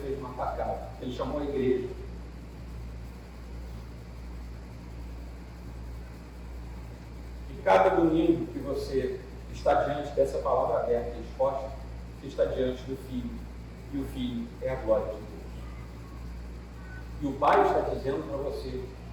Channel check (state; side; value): identical; both; correlation 1.00